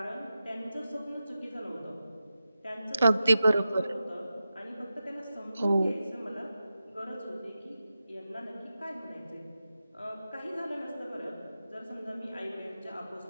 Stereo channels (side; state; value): both; inverted; correlation -0.92